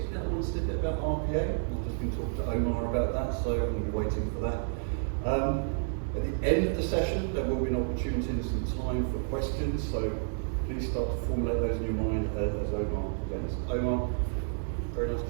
I want to say a bit about RPA. I've just been talking to Omar about that, so I'm going to be waiting for that. At the end of the session, there will be an opportunity and some time for questions, so please start to formulate those in your mind as Omar presents. Omar, very nice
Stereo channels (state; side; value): silent; left; digital silence